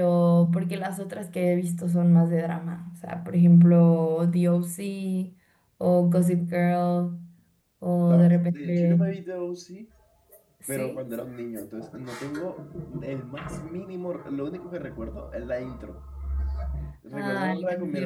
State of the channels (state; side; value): identical; both; correlation 1.00